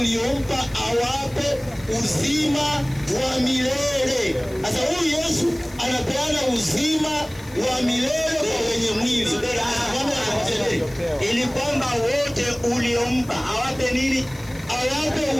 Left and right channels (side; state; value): left; noise; hiss, 22 dB below the sound